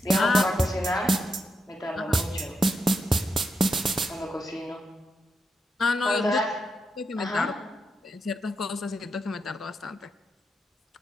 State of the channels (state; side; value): normal; both; correlation 0.84